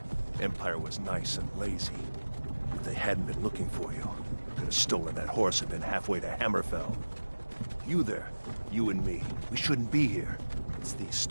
Empire was nice and lazy. If they hadn't been looking for you, could have stolen that horse and been halfway to Hammerfell. You there, you and me, we shouldn't be here. It's these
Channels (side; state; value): both; inverted; correlation -1.00